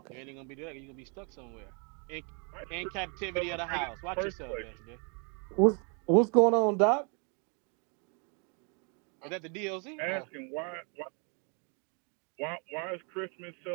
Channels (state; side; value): quieter; left; 36.5 dB